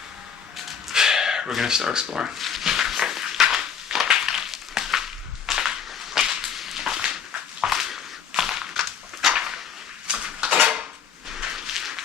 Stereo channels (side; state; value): right; quieter; 7.5 dB